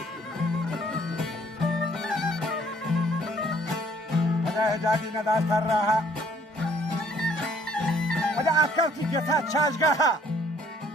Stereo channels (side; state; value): both; normal; correlation 0.61